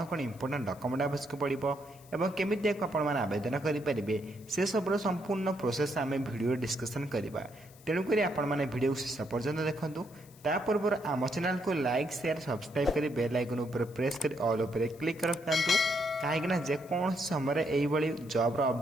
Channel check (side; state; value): left; noise; hiss, 24 dB below the sound